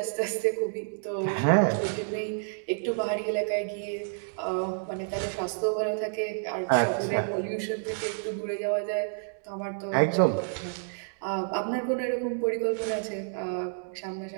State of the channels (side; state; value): left; silent; digital silence